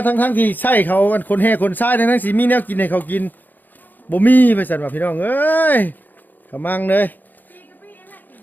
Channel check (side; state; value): right; late; 0.087 ms